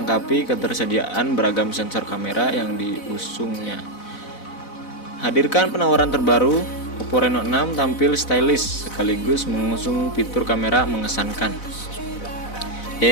ketersediaan beragam sensor kamera yang diusungnya. Hadirkan penawaran terbaru, Oppo Reno 6 tampil stylish sekaligus mengusung fitur kamera mengesankan.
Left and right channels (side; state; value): right; late; 4.0 ms